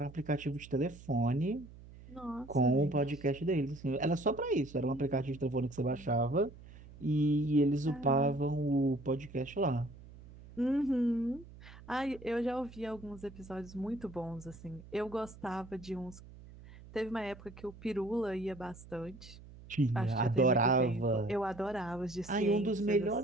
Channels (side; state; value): right; noise; hum, 18 dB below the sound